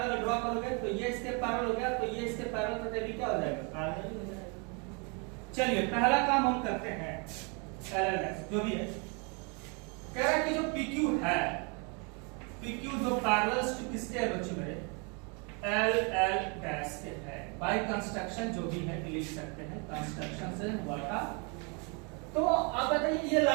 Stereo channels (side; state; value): left; quieter; 33.7 dB